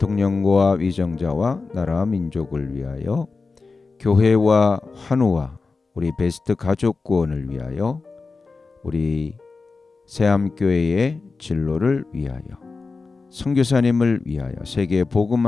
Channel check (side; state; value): right; quieter; 4.1 dB